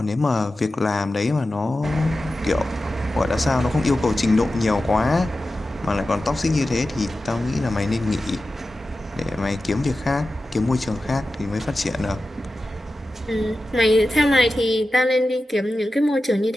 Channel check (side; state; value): both; normal; correlation 0.93